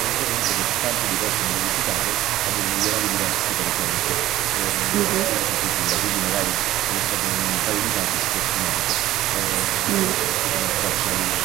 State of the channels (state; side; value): quieter; left; 14.8 dB